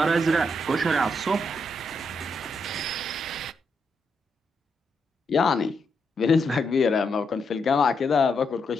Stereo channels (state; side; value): normal; both; correlation 0.80